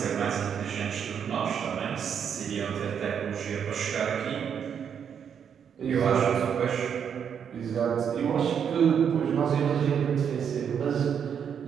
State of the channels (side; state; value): left; quieter; 7.8 dB